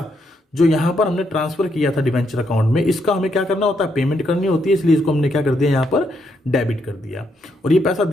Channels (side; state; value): both; normal; correlation 0.77